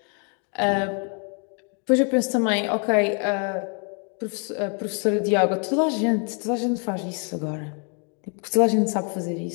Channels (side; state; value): right; quieter; 38.9 dB